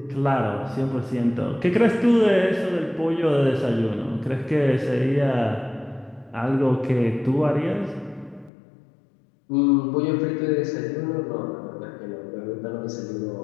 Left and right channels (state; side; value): drops out; right; at 8.5 s